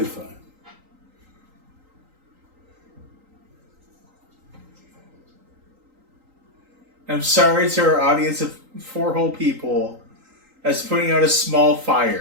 fine. I'm sorry to our audience of 4 whole people as putting out a small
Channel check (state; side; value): late; left; 3.8 ms